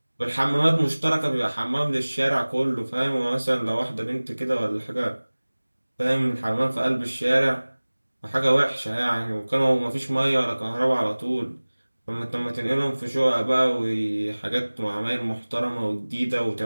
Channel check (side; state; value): both; inverted; correlation -1.00